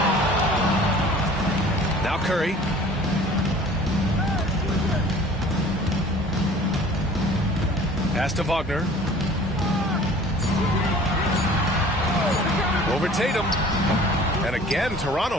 Now Curry. Pass to Wagner. Over Tatum. And again,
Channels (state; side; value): normal; both; correlation 0.47